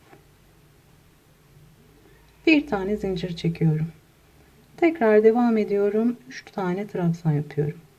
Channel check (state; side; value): identical; both; correlation 1.00